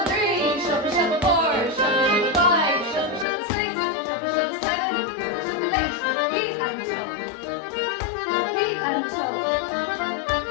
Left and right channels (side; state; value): right; drops out; at 3.2 s